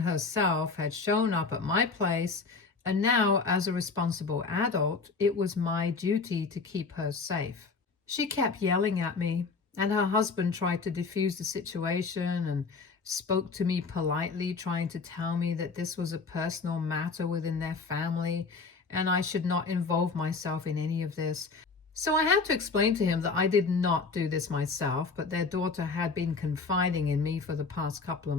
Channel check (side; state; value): right; quieter; 4.4 dB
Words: had shown up at my place, and now, as a responsible adult, it was my duty to keep her safe. She kept yelling at me, and her husband tried to defuse the situation and spoke to me politely, trying to tell me that this was a personal matter within their family and I should not involve myself in any of this. So I had to explain to him that I did not do this myself, but their daughter had been confiding in me for the past couple of